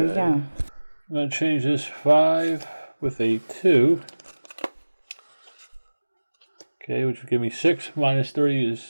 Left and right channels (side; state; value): both; inverted; correlation -1.00